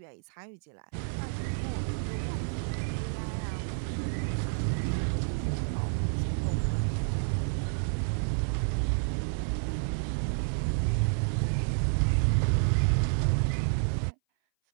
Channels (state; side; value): silent; left; 58 dB below the other